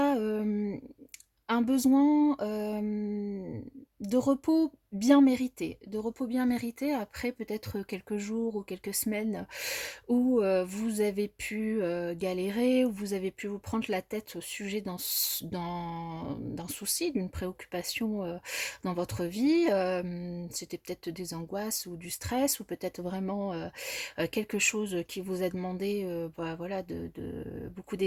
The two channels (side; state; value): both; identical; correlation 1.00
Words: un besoin de repos bien mérité. De repos bien mérité après peut-être quelques jours ou quelques semaines où vous avez pu galérer, où vous avez pu vous prendre la tête au sujet d'un souci, d'une préoccupation dans votre vie. C'était peut-être des angoisses ou du stress, ou peut-être vraiment quelque chose qui vous a demandé voilà, beaucoup